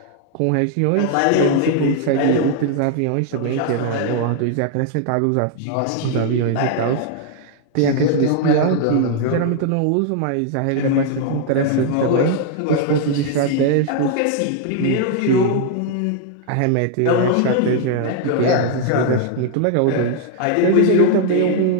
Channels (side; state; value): both; different; correlation 0.00